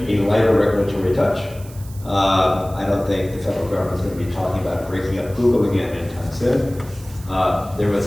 a lighter regulatory touch. I don't think the federal government's going to be talking about breaking up Google again anytime soon. There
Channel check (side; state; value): right; noise; hiss, 21 dB below the sound